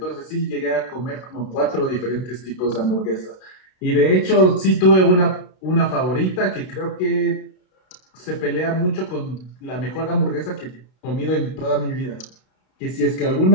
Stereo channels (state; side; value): late; right; 32 ms